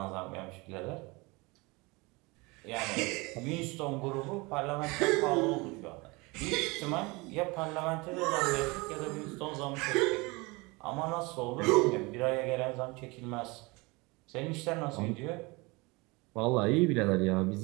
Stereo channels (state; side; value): quieter; left; 25.4 dB